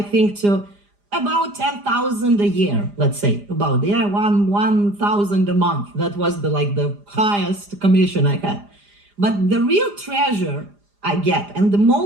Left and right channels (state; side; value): late; left; 4.9 ms